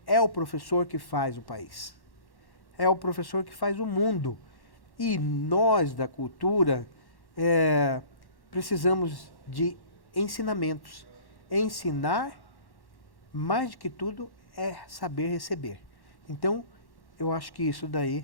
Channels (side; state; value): right; late; 1.1 ms